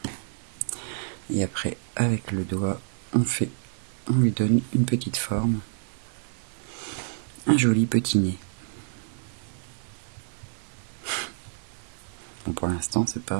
Et après avec le doigt on lui donne une petite forme, un joli petit nez. Bon, pour l'instant c'est pas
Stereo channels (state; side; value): silent; left; digital silence